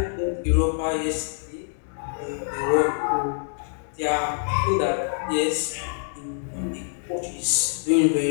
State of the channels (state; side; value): silent; right; 61 dB below the other